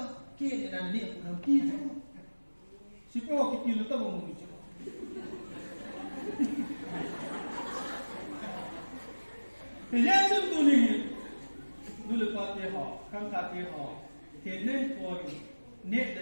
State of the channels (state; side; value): inverted; both; correlation -1.00